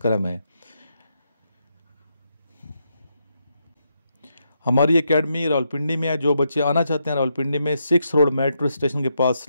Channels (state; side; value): inverted; both; correlation -0.81